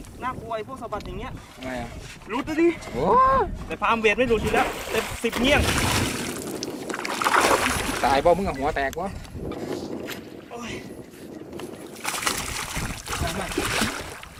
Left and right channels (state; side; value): identical; both; correlation 1.00